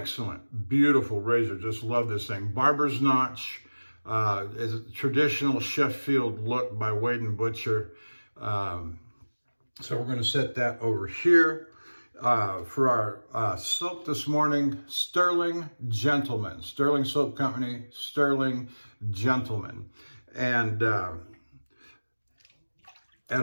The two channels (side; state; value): both; inverted; correlation -1.00